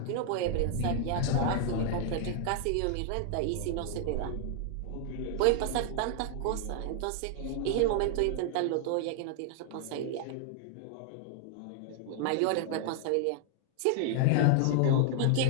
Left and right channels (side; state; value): both; different; correlation 0.00